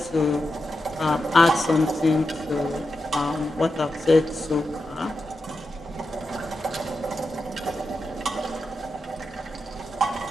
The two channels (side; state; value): both; normal; correlation 0.89